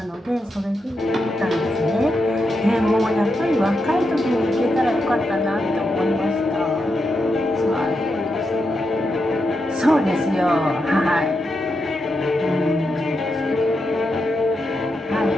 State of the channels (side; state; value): both; normal; correlation 0.85